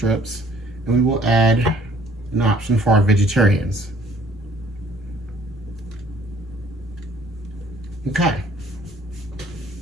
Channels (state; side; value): normal; both; correlation 0.58